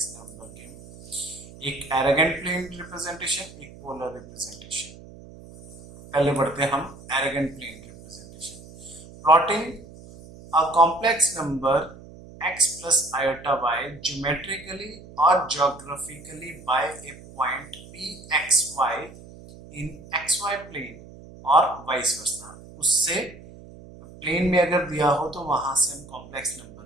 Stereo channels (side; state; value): right; noise; hum, 18 dB below the sound